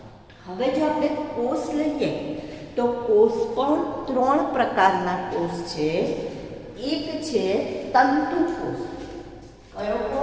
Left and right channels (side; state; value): both; identical; correlation 1.00